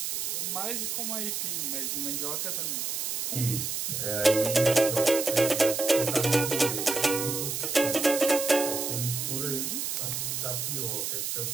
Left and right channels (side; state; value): right; noise; hiss, 2 dB below the sound